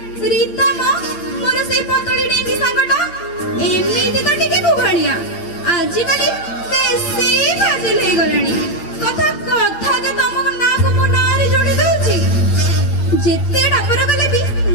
ରୀତା ମୋର ସେଇ ପତଳି ଡେଙ୍ଗି ସାଙ୍ଗଟା ଏମିତି ତ ଟିକେ କୁଭଳିଆ, ଆଜିକାଲି ବେଶୀ ଫାଜିଲ ହେଇଗଲାଣି। କଥା ଯେ ତମ ନାଁକୁ ମୋ ନାଁରେ ଯୋଡ଼ି ଦଉଛି। ଯେତେ ଡାକର କଲେ ବି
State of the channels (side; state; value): right; late; 8.5 ms